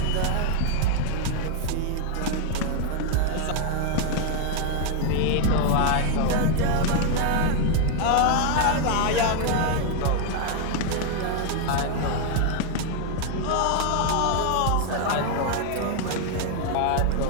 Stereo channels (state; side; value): different; both; correlation 0.00